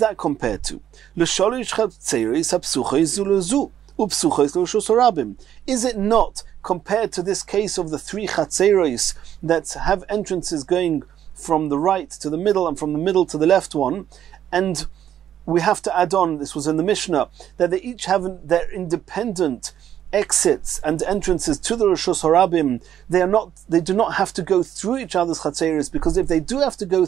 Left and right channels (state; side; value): quieter; left; 10.4 dB